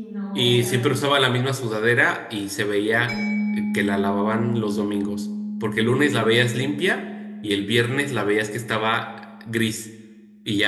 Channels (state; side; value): identical; both; correlation 1.00